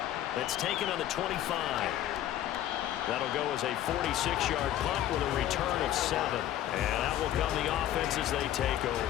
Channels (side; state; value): right; quieter; 12.4 dB